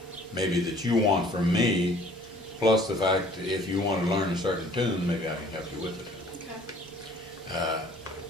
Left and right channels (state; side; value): normal; both; correlation 0.54